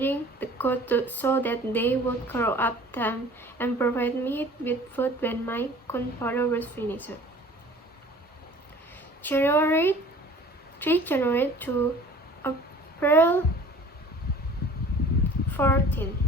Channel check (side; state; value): both; normal; correlation 0.47